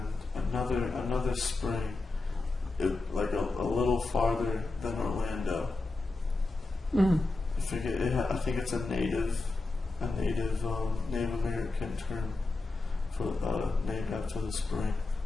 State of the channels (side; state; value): right; quieter; 3.3 dB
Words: another spring, like a little farther than Orlando. Mm. I think it's a Native American term for named after the spring,